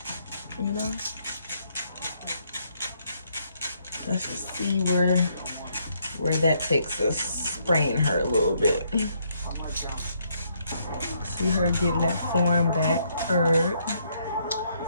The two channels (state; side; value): inverted; both; correlation -0.72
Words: You know? Let's just see where that takes us. Spraying her a little bit. See her getting that form back, curved.